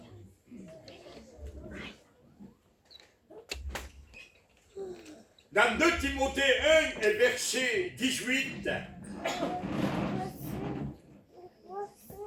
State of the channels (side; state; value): both; identical; correlation 1.00